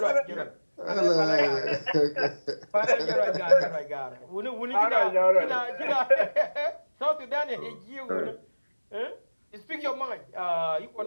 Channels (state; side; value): inverted; both; correlation -1.00